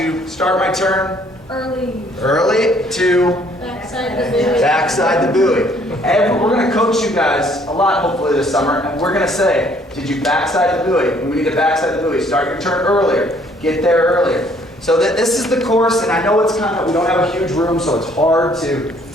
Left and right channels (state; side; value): normal; both; correlation 0.62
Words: start my turn early to Backside the buoy. backside the buoy. And we're going to coach you guys a lot, hopefully, this summer, and we're going to say, did you backside the buoy? We need to backside the buoy. Start your turn earlier. Get there earlier. So this is the course, and I know it's we don't have a huge room, so it's hard to